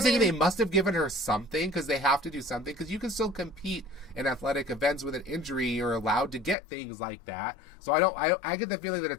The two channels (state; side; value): drops out; right; at 6.6 s